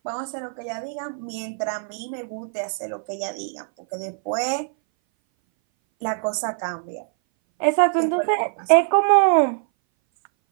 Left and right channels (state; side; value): silent; left; 60 dB below the other